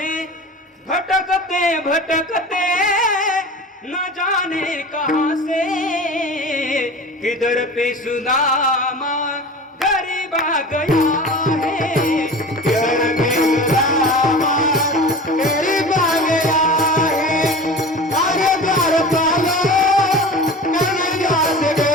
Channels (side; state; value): both; normal; correlation 0.36